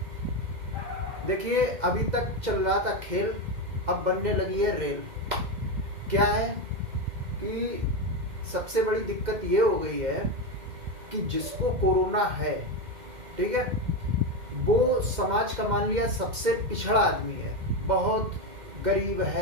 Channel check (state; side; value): late; left; 2.1 ms